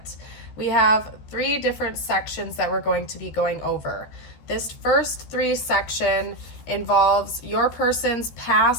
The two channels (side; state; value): right; late; 14 ms